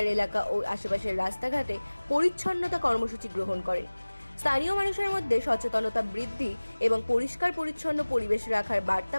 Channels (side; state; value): both; inverted; correlation -1.00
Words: এলাকা ও আশেপাশের রাস্তাঘাটে পরিচ্ছন্নতা কর্মসূচি গ্রহণ করেন। স্থানীয় মানুষের মধ্যে সচেতনতা বৃদ্ধি এবং পরিষ্কার পরিচ্ছন্ন পরিবেশ রাখার বার্তা